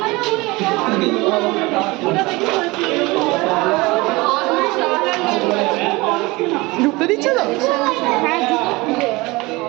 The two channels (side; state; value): left; quieter; 22.9 dB